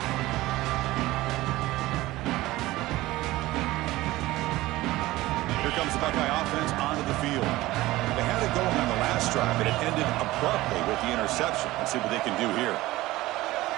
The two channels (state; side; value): quieter; left; 17.9 dB